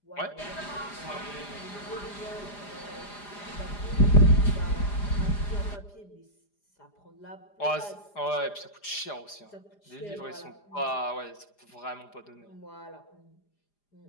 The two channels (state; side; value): late; right; 4.9 ms